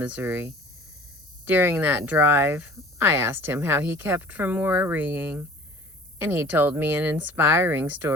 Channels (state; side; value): normal; both; correlation 0.46